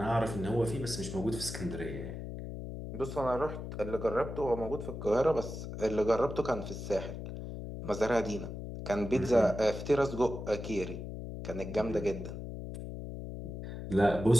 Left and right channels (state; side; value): noise; left; hum, 7 dB below the sound